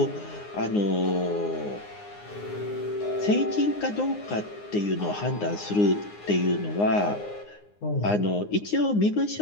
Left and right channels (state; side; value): late; right; 9.7 ms